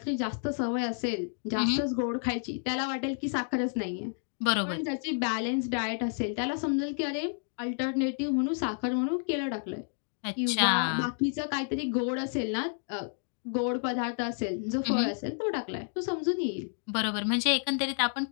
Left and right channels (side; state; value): right; silent; 58 dB below the other